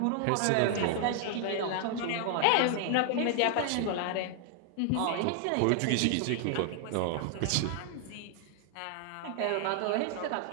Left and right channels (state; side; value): different; both; correlation 0.00